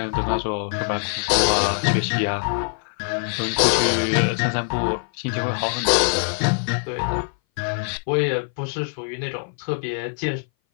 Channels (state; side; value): silent; right; 59 dB below the other